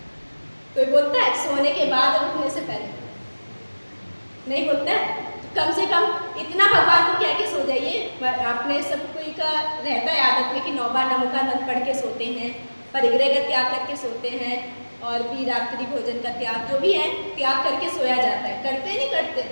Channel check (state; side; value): inverted; both; correlation -1.00